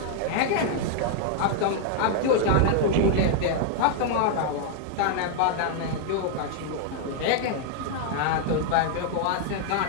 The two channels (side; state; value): both; different; correlation 0.00